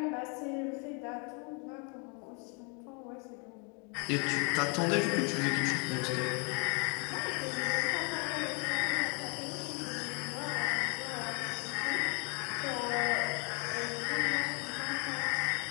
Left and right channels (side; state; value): right; quieter; 35.1 dB